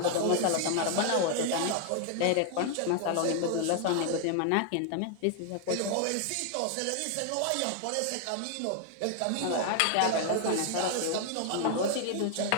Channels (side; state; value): both; different; correlation 0.00